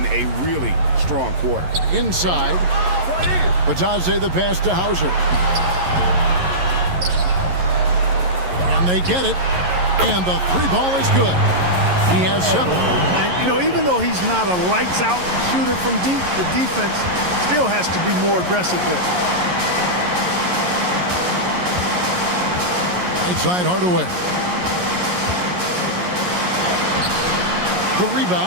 a really strong quarter. Inside. Batadze the pass to Hauser. And they get it. And the 3 ball is good. He has 7. And, you know, even though he's not a lights-out shooter from deep, the defense still has to be more aggressive there. Right side Hardaway. The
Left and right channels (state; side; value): late; left; 11 ms